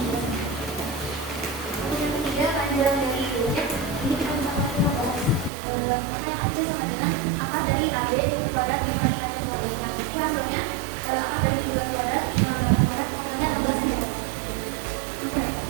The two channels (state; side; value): drops out; left; at 5.5 s